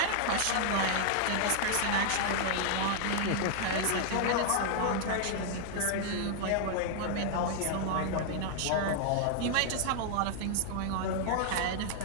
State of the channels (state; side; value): different; both; correlation 0.00